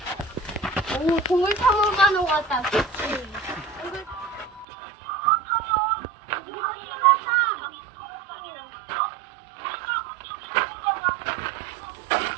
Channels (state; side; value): drops out; left; at 4.7 s